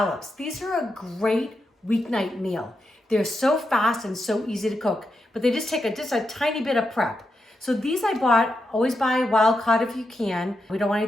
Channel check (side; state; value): both; normal; correlation 0.86